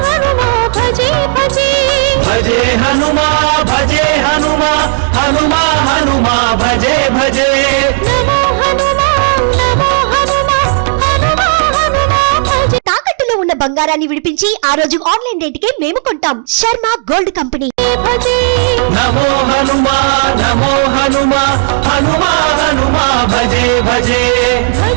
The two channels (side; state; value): left; silent; digital silence